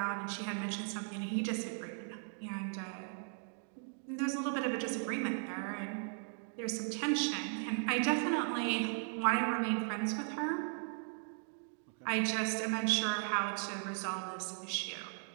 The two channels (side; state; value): left; silent; 53 dB below the other